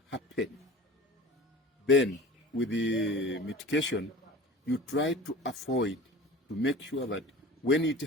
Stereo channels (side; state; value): both; normal; correlation 0.39